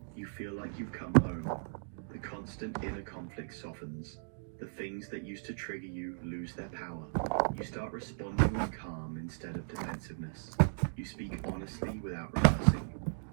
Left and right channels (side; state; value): left; silent; digital silence